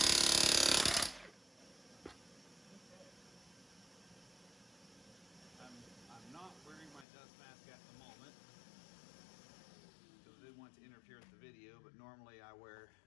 I'm not wearing my dust mask at the moment because I didn't want to interfere with the video, but normally I wear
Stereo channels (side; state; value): right; drops out; at 7.1 s